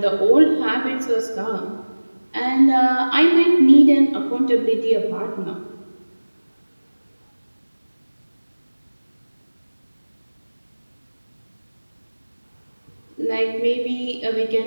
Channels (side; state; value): both; inverted; correlation -1.00